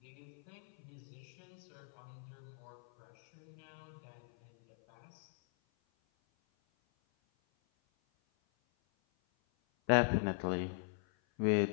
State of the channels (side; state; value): right; silent; 51 dB below the other